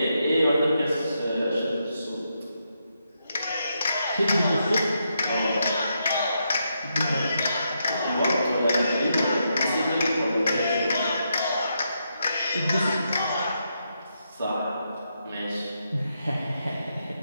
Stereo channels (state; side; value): inverted; both; correlation -0.81